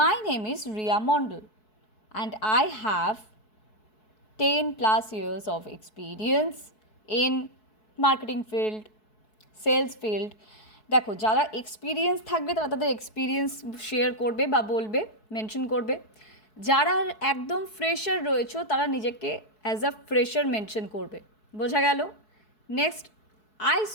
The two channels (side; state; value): right; late; 4.7 ms